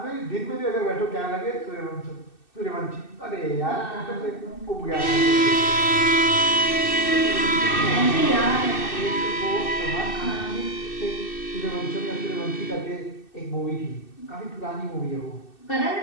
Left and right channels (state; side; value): late; right; 2.6 ms